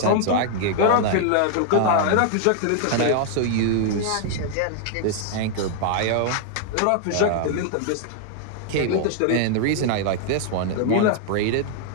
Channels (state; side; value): different; both; correlation 0.00